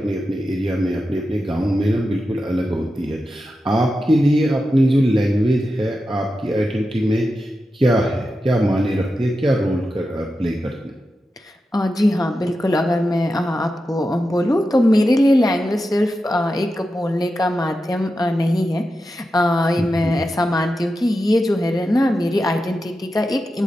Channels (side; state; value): both; normal; correlation 0.90